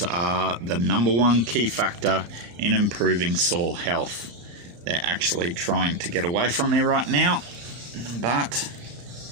are the #1 key factor in improving soil health. They're actually trying to get away from me right now, but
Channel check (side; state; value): left; late; 34 ms